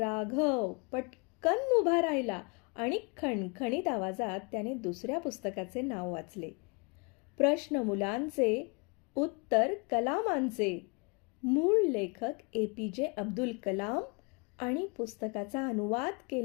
पटकन उभा राहिला आणि खणखणीत आवाजात त्याने दुसऱ्या पुस्तकाचे नाव वाचले. प्रश्न मुलांचे, उत्तर कलामांचे. मूळ लेखक APJ अब्दुल कलाम आणि पुस्तकाचा अनुवाद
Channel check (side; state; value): right; quieter; 32.3 dB